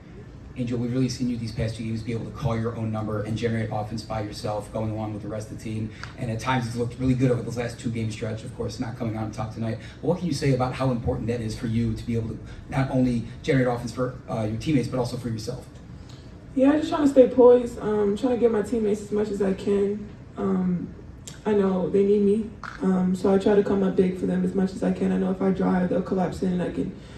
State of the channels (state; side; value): identical; both; correlation 1.00